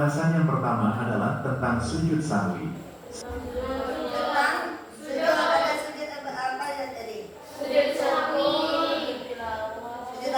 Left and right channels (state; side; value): identical; both; correlation 1.00